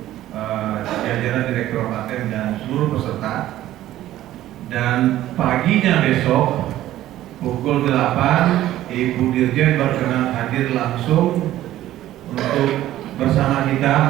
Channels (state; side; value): quieter; left; 13.9 dB